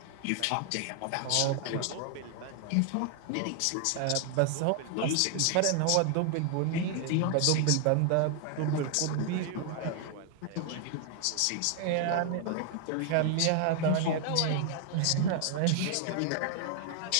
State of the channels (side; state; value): both; different; correlation 0.00